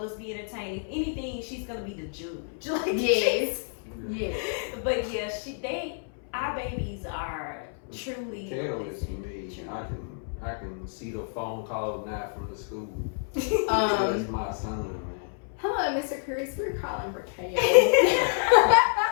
being entertained. If anything, she's gonna be the judge. Like, Yes. Yes. But yeah, our babies are truly. KO is me. I can see the phone calls now from the school. That's my son, man. Hello, Mr. Kris. We're calling for KO.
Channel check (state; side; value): silent; right; 59 dB below the other